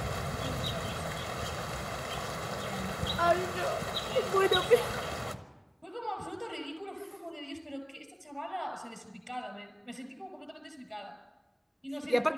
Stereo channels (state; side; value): identical; both; correlation 1.00